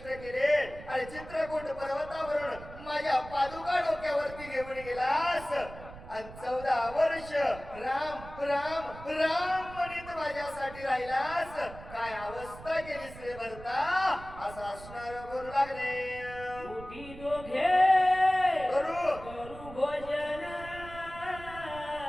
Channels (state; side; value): noise; right; rumble, 15 dB below the sound